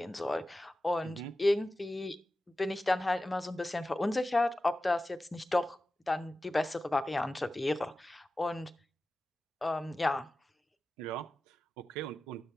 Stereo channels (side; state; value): both; normal; correlation 0.94